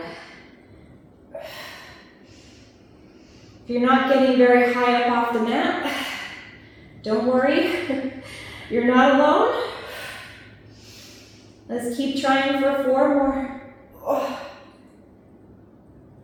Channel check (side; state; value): both; identical; correlation 1.00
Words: If you're not getting very high up off the mat, don't worry. You're not alone. Let's keep trying for 4 more.